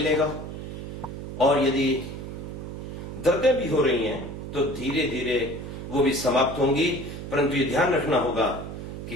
और यदि दर्दें भी हो रही हैं तो धीरे धीरे वो भी समाप्त होंगी। परंतु ये ध्यान रखना होगा कि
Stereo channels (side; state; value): right; noise; hum, 8 dB below the sound